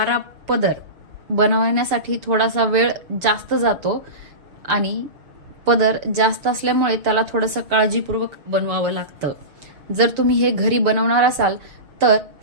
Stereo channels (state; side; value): late; left; 6.7 ms